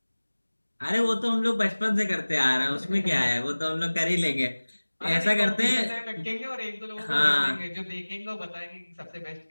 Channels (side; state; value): both; inverted; correlation -1.00